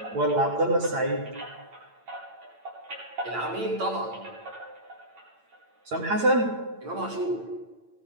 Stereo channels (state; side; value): late; left; 8.9 ms